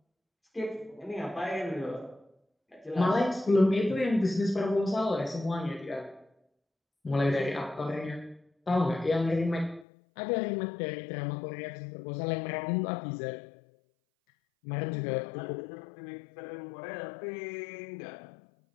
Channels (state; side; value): drops out; right; at 9.9 s